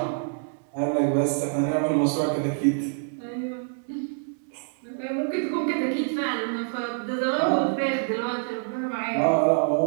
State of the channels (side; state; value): left; silent; digital silence